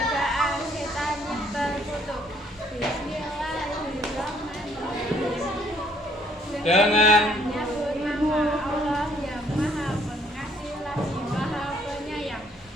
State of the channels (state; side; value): normal; both; correlation 0.65